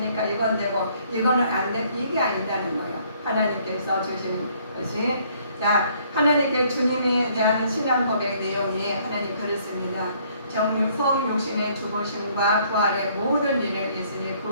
이건 되고 이거는 안 돼. 이게 아니다는 거예요. 하나님께서 주시는 것이. 자, 하나님께 주님에 대한 신앙 고백 내용이 하나님 그렇습니다. 성육신의 죽으심과 부활의 모든 일을 예수님이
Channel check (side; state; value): both; inverted; correlation -0.63